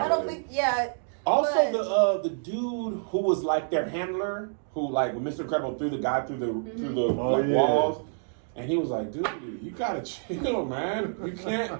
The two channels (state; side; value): silent; left; digital silence